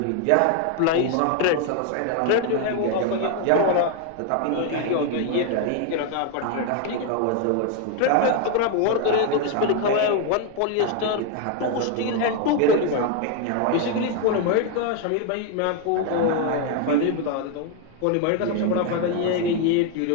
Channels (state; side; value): different; both; correlation 0.01